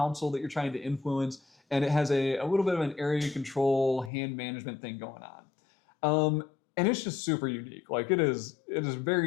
that you're trying to influence, and it has a little bit of an area control hand management thing going on. And it's just super unique. Like it is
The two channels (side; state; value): right; drops out; at 4.1 s